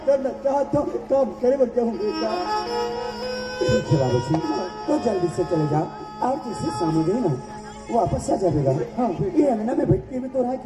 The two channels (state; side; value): identical; both; correlation 1.00